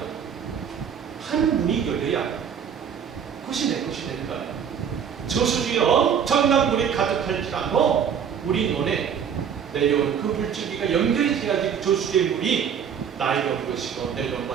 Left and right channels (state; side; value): quieter; left; 7.7 dB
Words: 하늘문이 열려야 그것이 내 것이 되는 거예요. 저수지에 엄청난 물이 가득할지라도 우리 눈에 내려온 그 물줄기가 연결이 돼야지 저수지의 물이 나에게 온 것이고 내려온